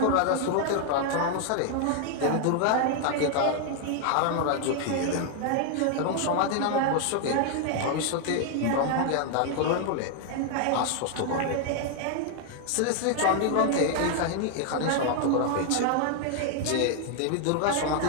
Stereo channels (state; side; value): different; both; correlation 0.00